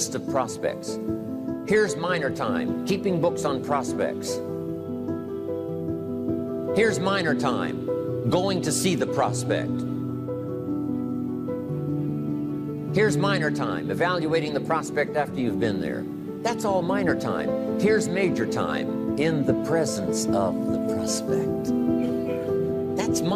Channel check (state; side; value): identical; both; correlation 1.00